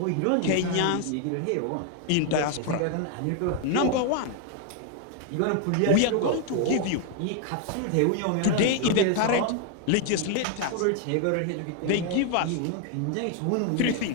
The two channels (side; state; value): both; different; correlation 0.00